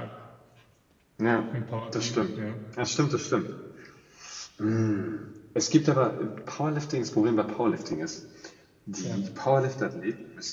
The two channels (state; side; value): identical; both; correlation 1.00